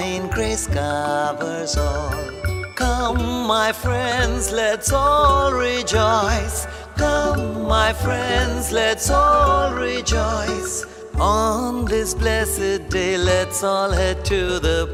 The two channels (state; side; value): identical; both; correlation 1.00